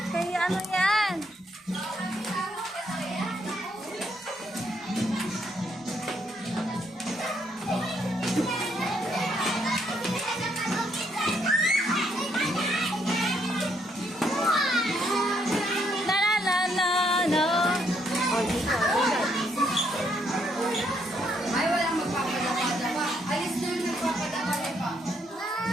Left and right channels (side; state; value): both; normal; correlation 0.73